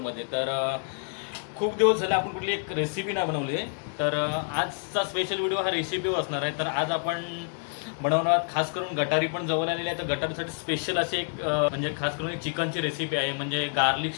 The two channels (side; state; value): right; silent; 58 dB below the other